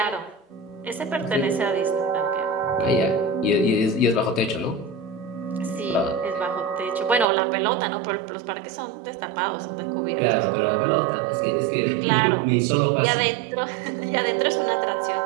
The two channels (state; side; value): drops out; left; at 7.2 s